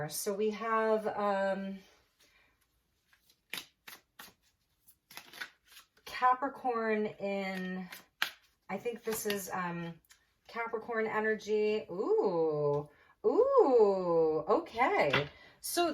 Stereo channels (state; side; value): identical; both; correlation 1.00